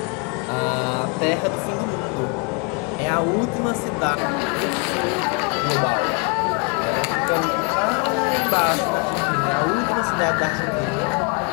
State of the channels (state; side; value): quieter; right; 32.7 dB